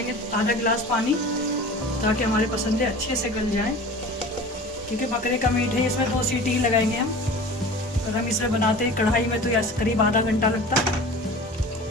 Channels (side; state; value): both; normal; correlation 0.39